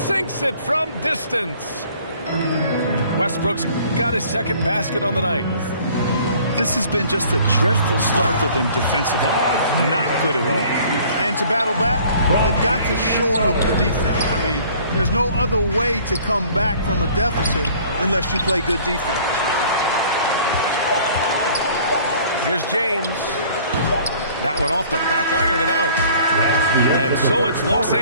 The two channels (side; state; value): both; inverted; correlation -0.53